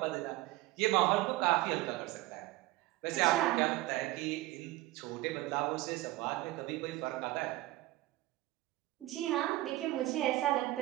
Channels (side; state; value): left; quieter; 18.1 dB